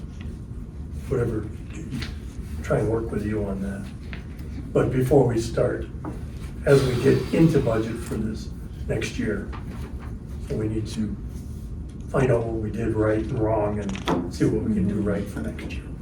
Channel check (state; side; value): identical; both; correlation 1.00